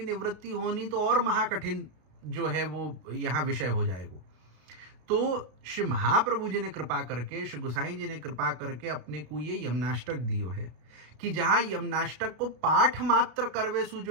निवृत्ति होनी तो और महाकठिन जो है वो यहाँ विषय हो जाएगा। तो श्री महाप्रभु जी ने कृपा करके, श्री गोसाई जी ने कृपा करके अपने को ये यमनाष्टक दियो है कि जहाँ यमनाष्टक को पाठ मात्र करवे सु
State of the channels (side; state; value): left; late; 33 ms